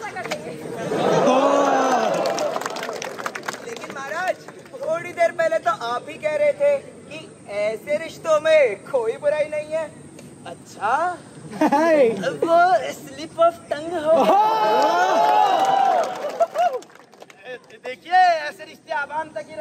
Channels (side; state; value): both; identical; correlation 1.00